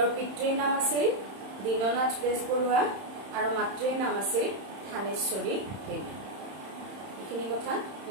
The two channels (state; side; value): late; left; 31 ms